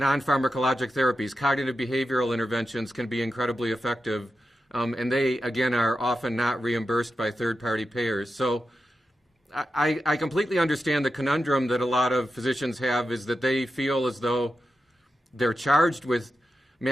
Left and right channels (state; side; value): normal; both; correlation 0.90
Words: therapies, cognitive behavioral interventions, can be incredibly effective. And they, again, are often not reimbursed by third-party payers. So I completely understand the conundrum that a lot of physicians have, is that they feel as though they're charged with